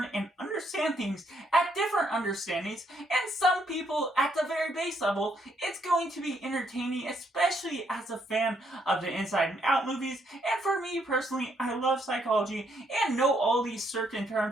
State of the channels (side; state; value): both; normal; correlation 0.73